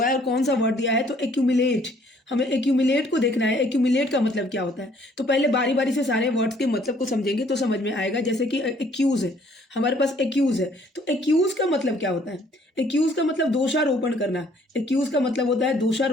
है, और कौन सा वर्ड दिया है? तो एक्यूमुलेट। हमें एक्यूमुलेट को देखना है। एक्यूमुलेट का मतलब क्या होता है? तो पहले बारी बारी से सारे वर्ड्स के मतलब को समझेंगे तो समझ में आएगा। जैसे कि एक्यूज है, हमारे पास एक्यूज है, तो एक्यूज का मतलब क्या होता है? एक्यूज का मतलब दोषारोपण करना। एक्यूज का मतलब होता है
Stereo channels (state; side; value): normal; both; correlation 0.61